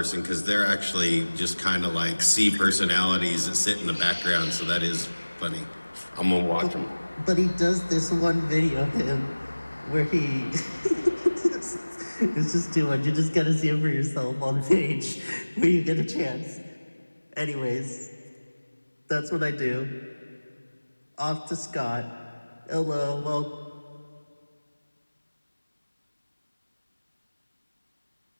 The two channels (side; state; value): both; inverted; correlation -1.00